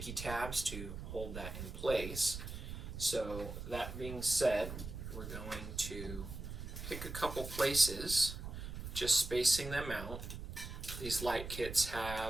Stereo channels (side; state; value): right; noise; rumble, 8 dB below the sound